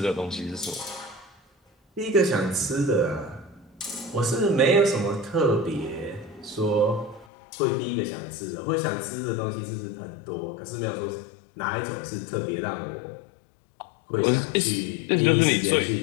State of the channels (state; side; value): drops out; right; at 7.2 s